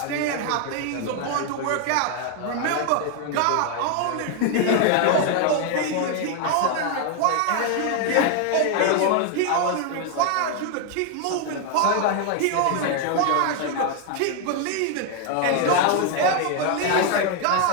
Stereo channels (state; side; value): different; both; correlation 0.01